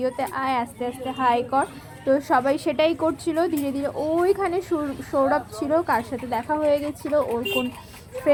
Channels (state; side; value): identical; both; correlation 1.00